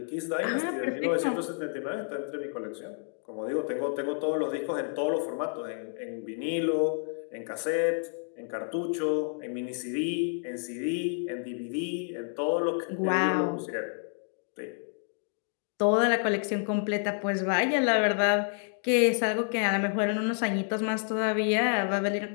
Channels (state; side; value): silent; right; 58 dB below the other